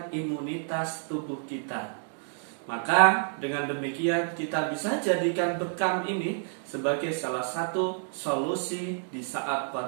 imunitas tubuh kita. Maka dengan demikian kita bisa jadikan bekam ini sebagai salah satu solusi di saat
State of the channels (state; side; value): silent; left; digital silence